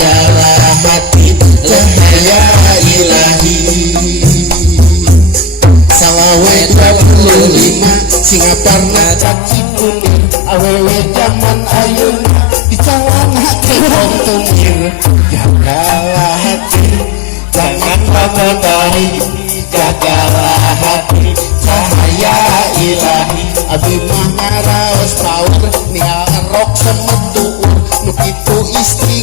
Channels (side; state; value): right; drops out; at 9.2 s